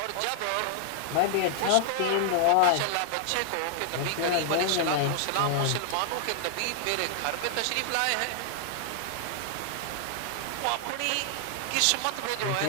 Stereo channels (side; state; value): both; different; correlation -0.01